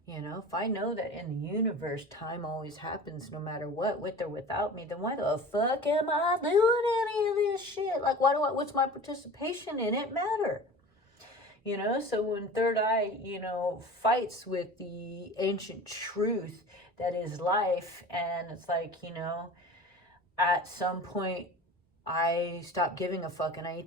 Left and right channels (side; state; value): both; normal; correlation 0.38